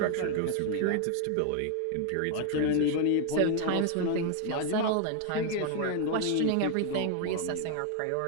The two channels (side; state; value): both; different; correlation 0.00